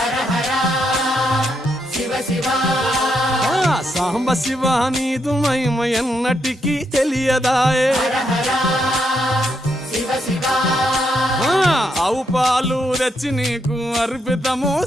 హర శివ శివ ఆ సాంబ శివ నీదు మహిమ ఎన్నటికీ తెలియదాయే హర హర శివ శివ ఆ ఆవు పాలు తెచ్చి నీకు అర్పితము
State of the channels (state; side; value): normal; both; correlation 0.79